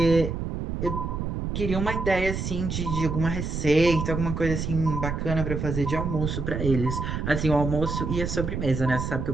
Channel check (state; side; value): noise; right; rumble, 3 dB below the sound